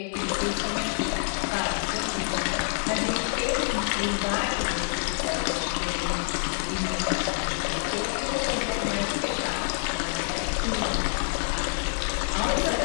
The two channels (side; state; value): right; silent; 60 dB below the other